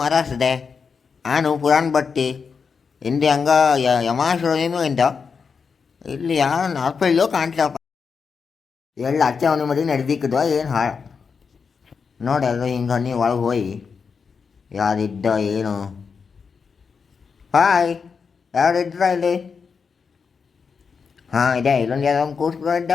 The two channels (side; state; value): right; quieter; 5.7 dB